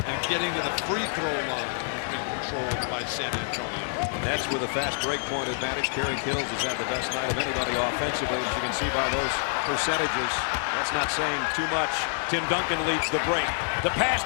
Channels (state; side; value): silent; right; digital silence